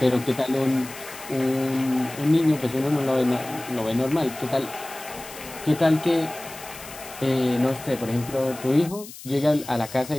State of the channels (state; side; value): noise; left; hiss, 15 dB below the sound